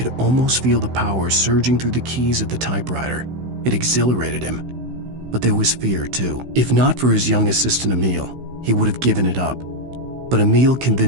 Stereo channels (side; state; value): left; late; 16 ms